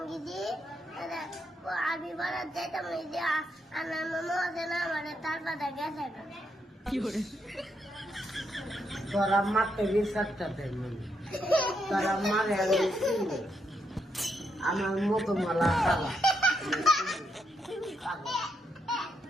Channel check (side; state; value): both; normal; correlation 0.79